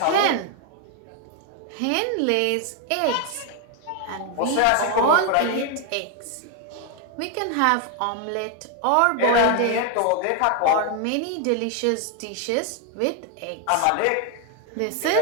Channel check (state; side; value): different; both; correlation 0.01